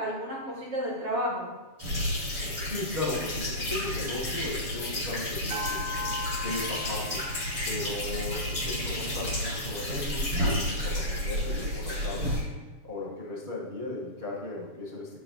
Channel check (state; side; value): late; left; 7.3 ms